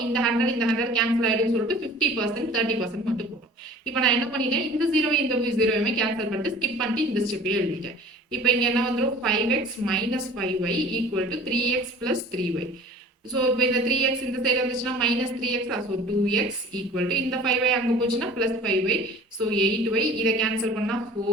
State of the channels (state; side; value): normal; both; correlation 0.45